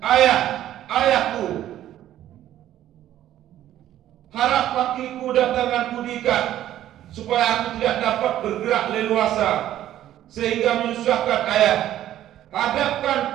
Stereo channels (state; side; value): quieter; left; 12.5 dB